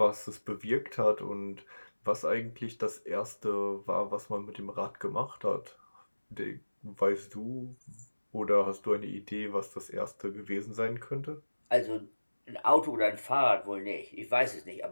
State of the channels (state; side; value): inverted; both; correlation -1.00